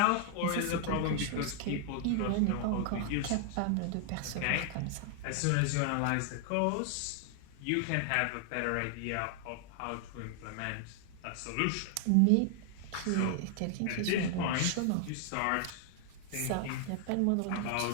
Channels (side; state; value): both; different; correlation 0.00